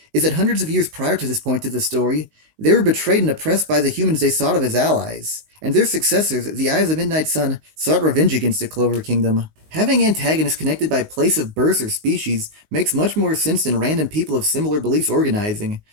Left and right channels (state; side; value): late; left; 19 ms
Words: is that hundreds of years prior to this point of the story, they were betrayed and oppressed by the humans they thought of as allies, and their successors, the Eyes of Midnight Sun, sought revenge against the Clover Kingdom. Having antagonists connected by place of birth or species makes much more sense than random people of similar beliefs organizing,